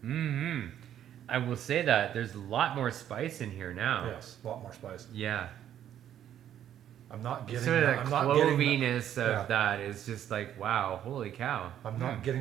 Mm-hmm. I will say that there's a lot more spice in here now. Yes, a lot more spice. Yeah. I'm not getting Sort of that. the I'm not getting cloviness of that is just like, wow, holy cow. I'm not getting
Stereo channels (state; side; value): quieter; left; 10.6 dB